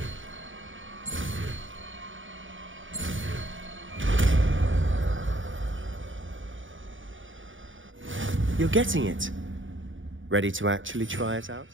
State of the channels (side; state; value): left; late; 0.56 ms